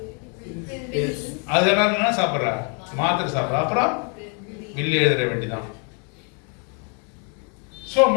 அது என்ன சாப்பிட்றா? மாத்திரை சாப்பிட்றா. அப்புறம் வில்லு எழுதுற வேண்டிதான். சோ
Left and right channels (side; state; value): right; quieter; 38.4 dB